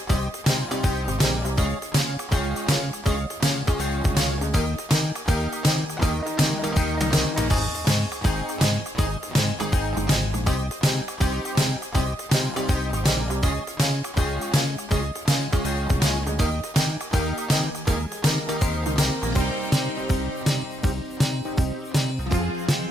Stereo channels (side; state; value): both; normal; correlation 0.80